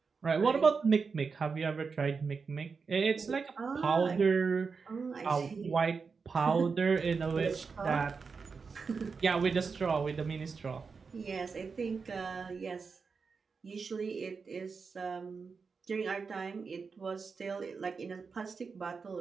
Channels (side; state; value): left; quieter; 5.1 dB